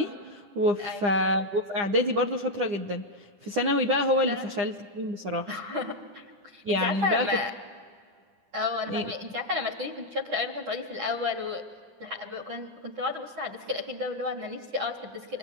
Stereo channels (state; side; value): late; left; 9.9 ms